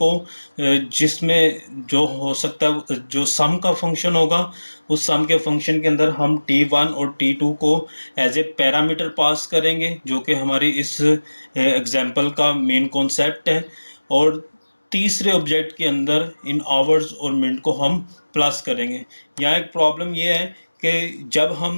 जिसमें जो हो सकता है जो सम का फंक्शन होगा, उस सम के फंक्शन के अंदर हम T1 और T2 को एज ए पैरामीटर पास करेंगे, जो कि हमारी इस एग्जाम्पल का मेन कॉन्सेप्ट है। और तीसरे ऑब्जेक्ट के अंदर इन आवर्स और मिनट को हम प्लस करेंगे। यहाँ एक प्रॉब्लम ये है कि जब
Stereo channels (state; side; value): inverted; both; correlation -1.00